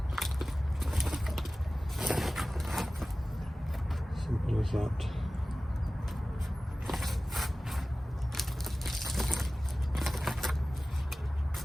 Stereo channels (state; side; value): normal; both; correlation 0.97